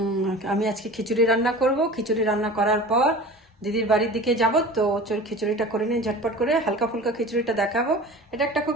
আমি আজকে খিচুড়ি রান্না করব। খিচুড়ি রান্না করার পর দিদির বাড়ির দিকে যাব। তো চল খিচুড়িটা করে নিয়ে ঝটপট করে হালকা ফুলকা খিচুড়িটা দেখাবো। এটা একটা খুব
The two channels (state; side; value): normal; both; correlation 0.37